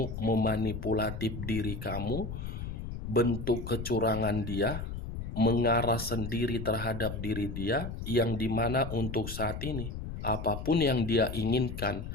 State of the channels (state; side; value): noise; left; rumble, 7 dB below the sound